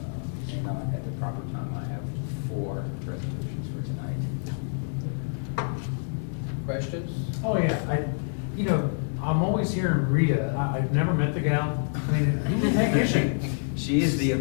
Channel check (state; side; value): silent; right; digital silence